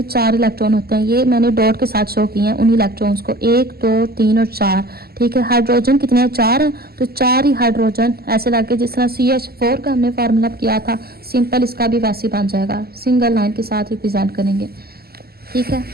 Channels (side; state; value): left; late; 0.45 ms